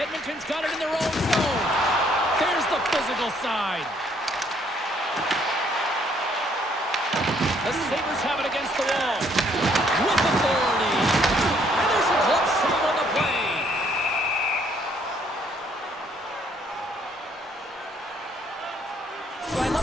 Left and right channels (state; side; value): normal; both; correlation 0.66